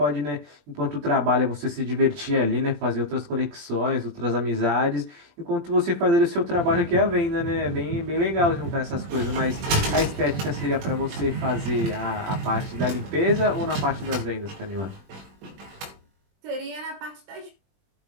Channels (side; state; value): left; late; 21 ms